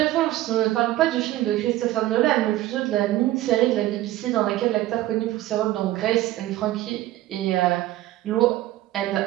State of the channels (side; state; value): left; quieter; 15.3 dB